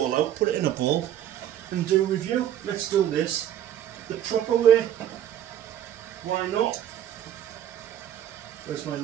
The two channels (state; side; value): quieter; left; 11.1 dB